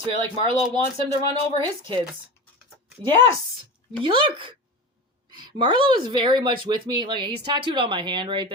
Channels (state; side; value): normal; both; correlation 0.28